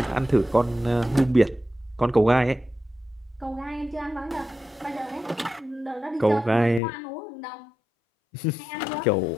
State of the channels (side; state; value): right; drops out; at 6.8 s